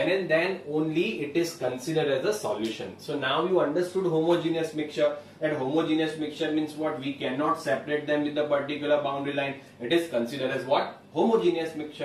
and then only it is considered as a solution. So now you understood homogeneous mixture, and homogeneous mixture means what? We cannot separate them with a particular boundary line. It is considered as what? Homogeneous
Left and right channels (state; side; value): identical; both; correlation 1.00